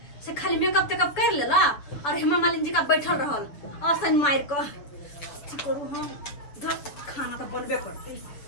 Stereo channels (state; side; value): late; right; 6.9 ms